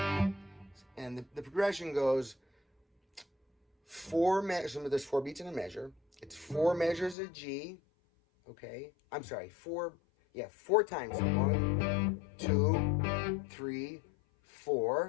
And the progression goes 4 measures. There's 4 beats in a measure. It's 4 measures of G. Okay, I'm sorry. 4 times. 1, 2, 3,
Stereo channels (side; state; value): right; drops out; at 7.2 s